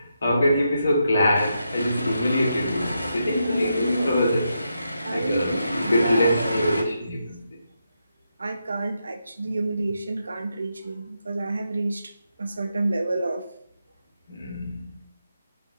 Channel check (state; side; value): inverted; both; correlation -0.83